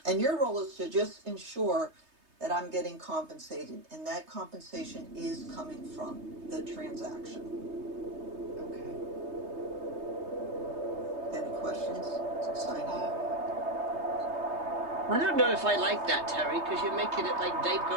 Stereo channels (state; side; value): late; left; 3.2 ms